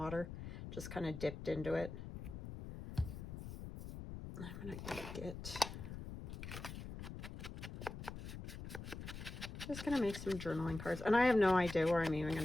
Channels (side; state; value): left; noise; rumble, 9 dB below the sound